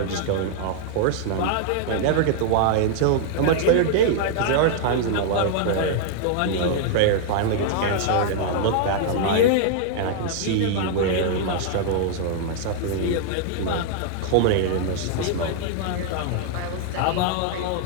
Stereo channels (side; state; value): both; different; correlation -0.01